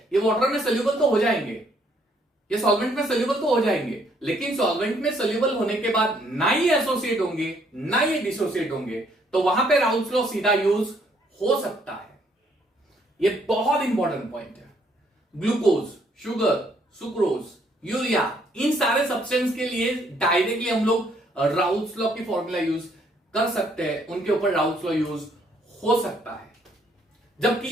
ये वाटर में सोल्यूबल तो हो जाएंगे, ये सॉल्वेंट में सोल्यूबल तो हो जाएंगे, लेकिन सॉल्वेंट में सोल्यूबल होने के बाद ना ये एसोसिएट होंगे ना ये डिसोसिएट होंगे, तो वहां पे राउल्स लॉ सीधा यूज हो सकता है। ये बहुत इंपॉर्टेंट पॉइंट है। ग्लूकोज, शुगर, सुक्रोज, यूरिया, इन सारे सब्सटेंस के लिए डायरेक्टली हम लोग राउल्स लॉ की फॉर्मूला यूज कर सकते हैं, उनके ऊपर राउल्स लॉ यूज हो सकता है।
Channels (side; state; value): both; normal; correlation 0.68